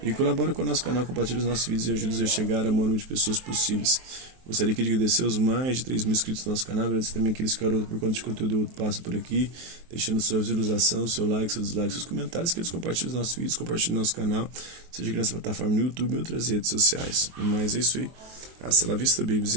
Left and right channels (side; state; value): left; late; 23 ms